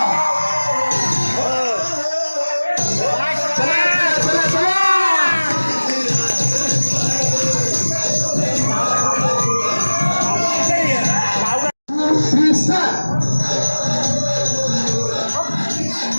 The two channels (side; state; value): both; inverted; correlation -1.00